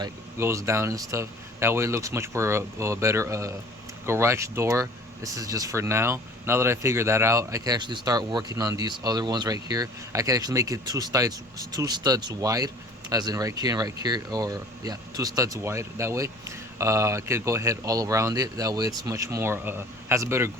goes down and stuff. That way it looks much more better garage door. This is just for now. Now that I figured that out, I can actually start working on these other ones right here. I can actually make it two studs wide, as in right here and right here, or yeah, 2 studs wide. That way I could go ahead all around it. That way it's much more has a better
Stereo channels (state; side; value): normal; both; correlation 0.49